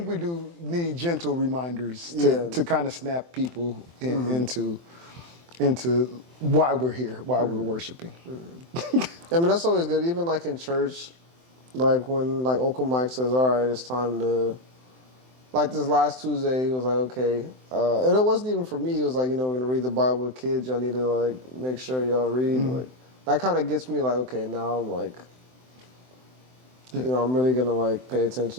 we do need gentle reminders to kind of snap people into why we're here, why we're worshiping. I mean, that's always good. Even like in church, like when like Uncle Mike says, all right, it's time to, like this last Tuesday, he was like, okay. And it wasn't even for me. It was like, we're going to read the Bible with kids. Y'all need to like make sure y'all read. Like that kind of gets me like, okay, now I'm like, You know, I'm really gonna like pay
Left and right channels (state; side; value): late; left; 23 ms